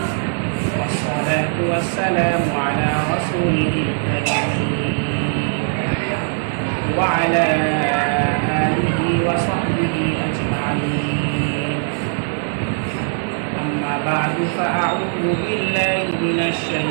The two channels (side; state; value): left; silent; digital silence